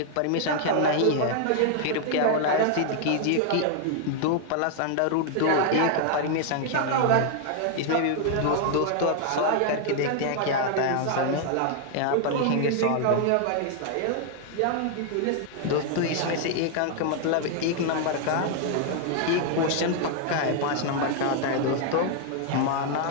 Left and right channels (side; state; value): both; different; correlation 0.00